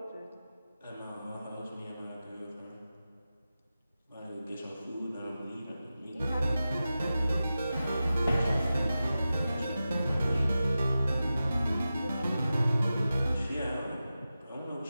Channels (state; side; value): inverted; both; correlation -0.93